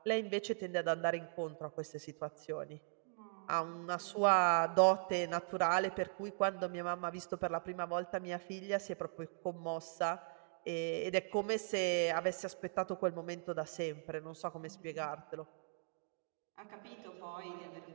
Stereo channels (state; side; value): silent; left; digital silence